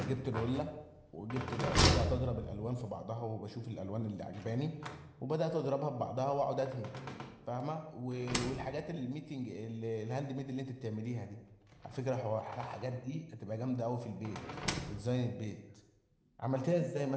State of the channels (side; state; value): both; identical; correlation 1.00